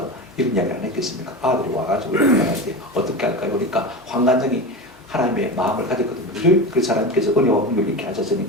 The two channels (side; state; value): both; normal; correlation 0.25